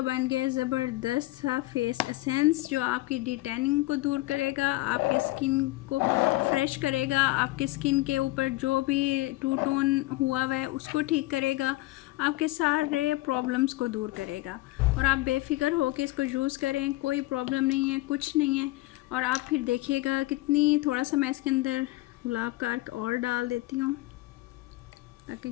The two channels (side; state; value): right; quieter; 19.3 dB